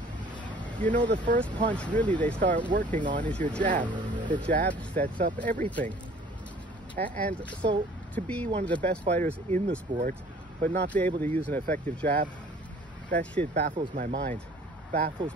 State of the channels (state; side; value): normal; both; correlation 0.52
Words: you know the first punch really they start working on is your jab. The jab sets up everything. And so to be one of the best fighters in the sport, but not be able to use an effective jab, that shit baffles my mind. Baffles